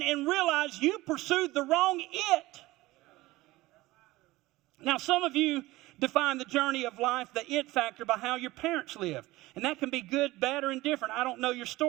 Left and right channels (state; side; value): quieter; left; 18.9 dB